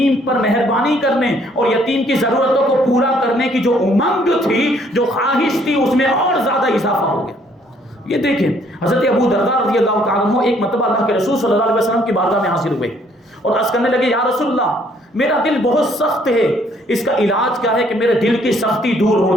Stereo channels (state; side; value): normal; both; correlation 0.64